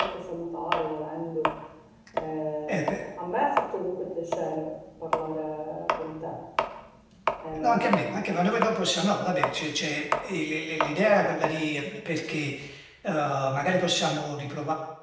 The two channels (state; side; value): identical; both; correlation 1.00